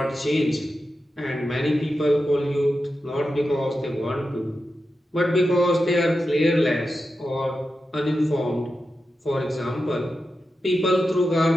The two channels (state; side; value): normal; both; correlation 0.90